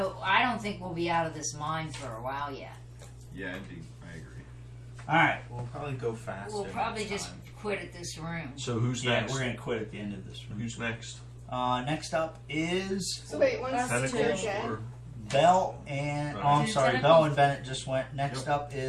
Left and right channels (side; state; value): both; identical; correlation 1.00